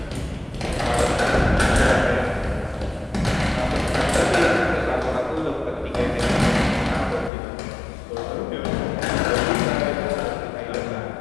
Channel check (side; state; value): right; drops out; at 7.3 s